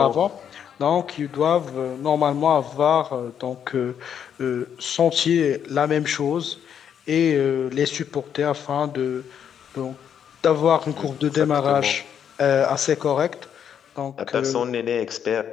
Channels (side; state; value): right; quieter; 8.5 dB